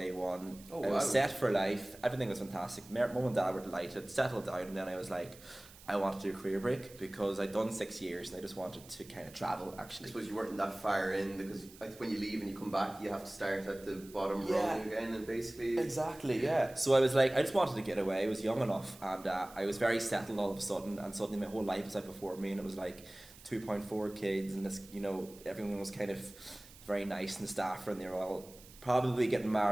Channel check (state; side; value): noise; right; hiss, 20 dB below the sound